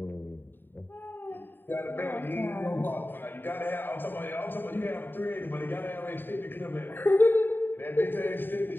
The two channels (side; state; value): right; late; 0.094 ms